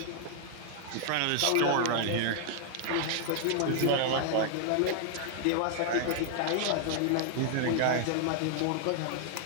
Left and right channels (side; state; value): both; different; correlation 0.00